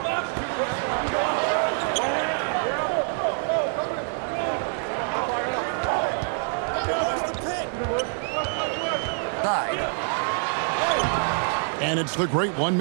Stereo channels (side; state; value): left; silent; 61 dB below the other